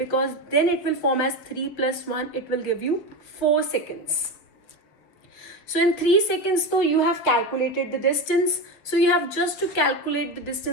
then it will form as 3 plus 1, it will give you 4 seconds. So in 3 seconds though you have calculated the distance. So you have just to calculate the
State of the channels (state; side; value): late; right; 7.0 ms